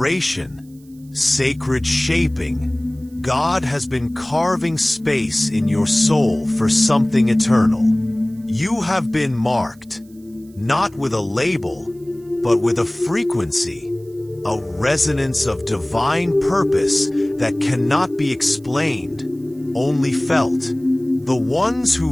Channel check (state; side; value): noise; right; hiss, 30 dB below the sound